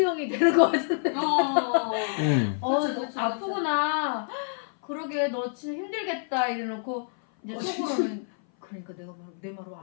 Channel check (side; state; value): right; silent; 57 dB below the other